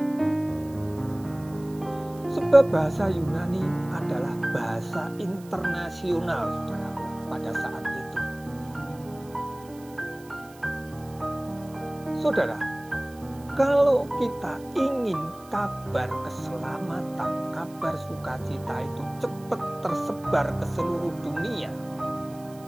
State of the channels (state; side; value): noise; right; hiss, 23 dB below the sound